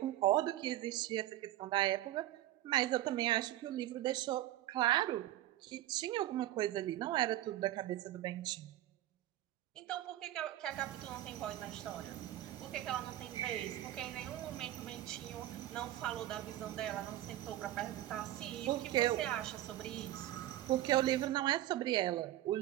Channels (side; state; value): left; quieter; 14.3 dB